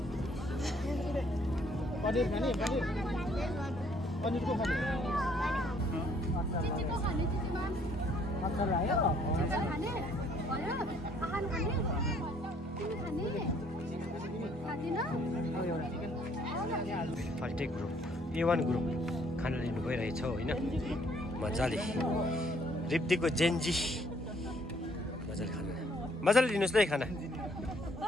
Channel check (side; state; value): both; normal; correlation 0.64